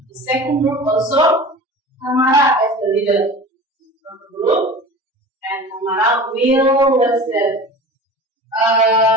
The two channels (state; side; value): normal; both; correlation 0.36